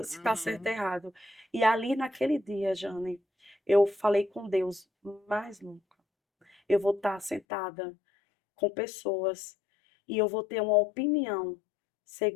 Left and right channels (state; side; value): drops out; right; at 7.4 s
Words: se está certo ou Uhum. errado. E ali naquele dia, Jane, eu falei com Deus, mais nunca. Eu vou estar sentada com pessoas e eu vou ter uma opinião